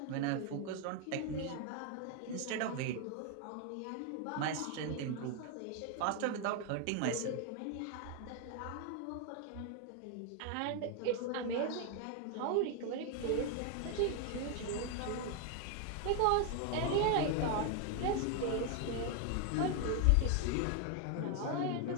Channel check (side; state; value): both; different; correlation 0.01